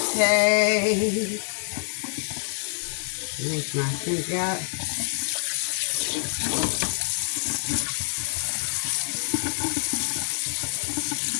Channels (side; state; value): right; silent; digital silence